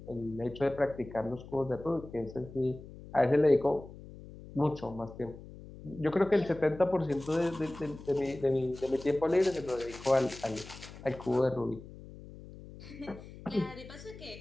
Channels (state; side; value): noise; left; hum, 16 dB below the sound